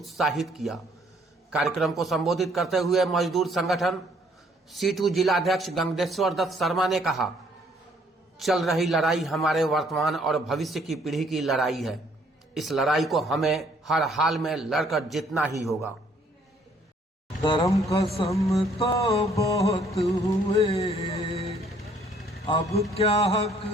किया। कार्यक्रम को संबोधित करते हुए मजदूर संगठन C2 जिला अध्यक्ष गंगेश्वर दत्त शर्मा ने कहा, चल रही लड़ाई हमारे वर्तमान और भविष्य की पीढ़ी की लड़ाई है। इस लड़ाई को हमें हर हाल में लड़कर जीतना ही होगा। धर्म कसम तो बहुत हुए, अब क्या हक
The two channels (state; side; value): normal; both; correlation 0.63